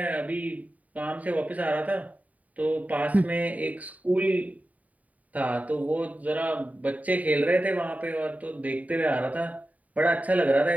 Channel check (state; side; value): late; left; 0.071 ms